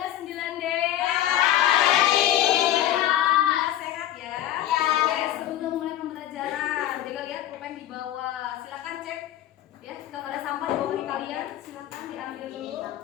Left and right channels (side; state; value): right; quieter; 12.6 dB